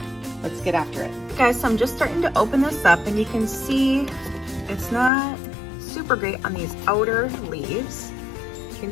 let's get after it. Guys, so I'm just starting to open this up and you can see it's not super great on these outer leaves. You can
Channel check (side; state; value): right; drops out; at 5.1 s